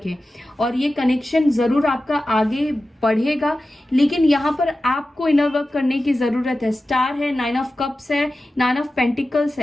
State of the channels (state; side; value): normal; both; correlation 0.94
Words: और ये कनेक्शन जरूर आपका आगे बढ़ेगा, लेकिन यहाँ पर आपको इनर वर्क करने की जरूरत है। स्टार है, 9 ऑफ कप्स है, 9 ऑफ पेंटिकल्स